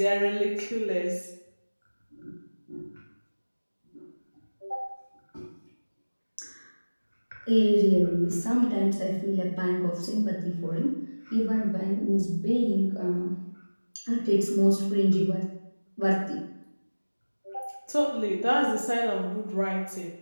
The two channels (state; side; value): inverted; both; correlation -1.00